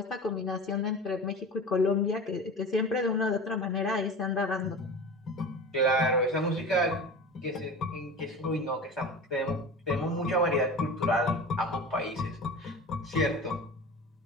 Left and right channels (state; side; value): normal; both; correlation 0.33